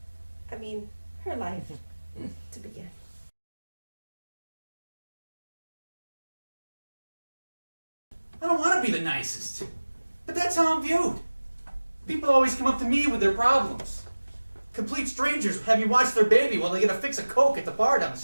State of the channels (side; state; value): both; inverted; correlation -1.00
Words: her life to begin. I don't want to be the nicest, but that's how I'm viewed. People always come up to me with their problems. Complete strangers have me watch their baby while they get a fix of Coke at the bar down the